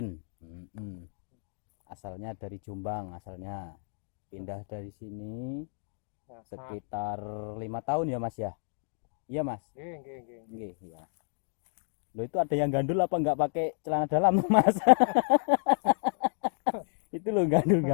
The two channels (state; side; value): silent; right; digital silence